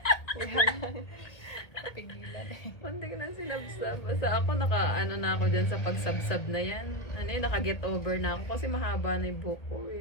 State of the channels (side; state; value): right; late; 1.8 ms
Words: pigilan eh. Hindi ko na sinabsab. Basta ako ano na ako dyan sa pagsabsab na yan. Ano yun, naka-get over na ako kasi mahaba na yung buhok ko